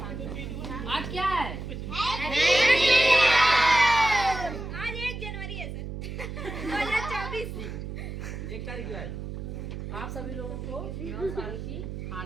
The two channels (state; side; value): noise; right; hum, 7 dB below the sound